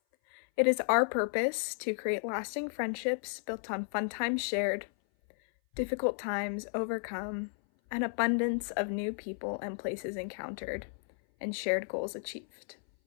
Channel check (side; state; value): right; silent; 55 dB below the other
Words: it is our purpose to create lasting friendships built on fun times shared, difficult times overcome, an abundance of new people and places encountered, and shared goals achieved.